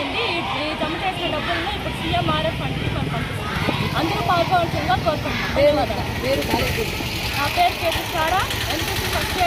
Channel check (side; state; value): both; identical; correlation 1.00